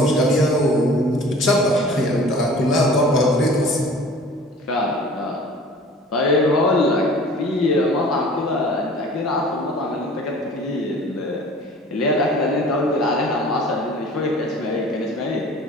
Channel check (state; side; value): normal; both; correlation 0.45